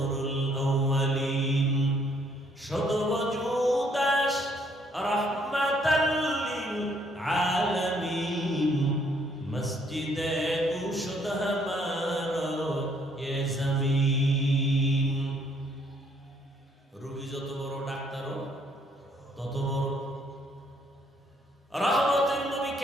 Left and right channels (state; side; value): normal; both; correlation 0.67